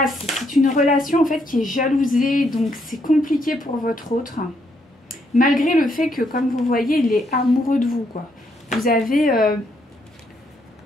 c'est une relation en fait qui est jalousée, donc c'est compliqué pour votre autre, malgré le fait que, comme vous voyez, il est amoureux de vous, quoi. Vous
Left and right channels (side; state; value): both; normal; correlation 0.74